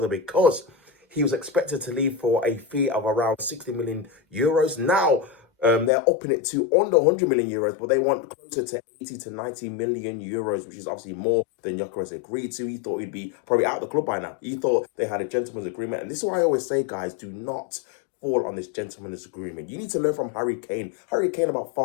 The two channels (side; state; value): right; drops out; at 5.9 s